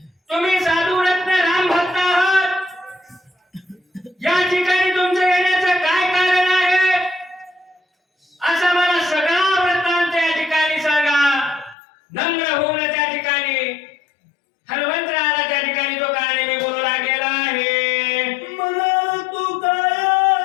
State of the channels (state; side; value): drops out; right; at 11.8 s